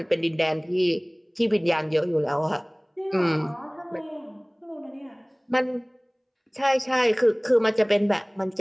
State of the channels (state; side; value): identical; both; correlation 1.00